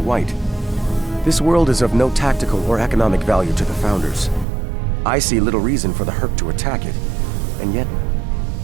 This world is of no tactical or economic value to the Founders. I see little reason for the Herc to attack it, and yet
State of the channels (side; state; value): left; drops out; at 4.5 s